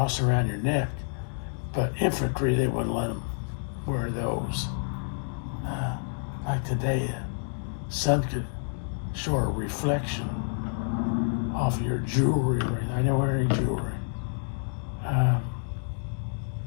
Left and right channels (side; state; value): right; silent; digital silence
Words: around your neck, but infantry, they wouldn't let them wear those. Like today, sun could show a reflection off of your jewelry. I don't wear any jewelry.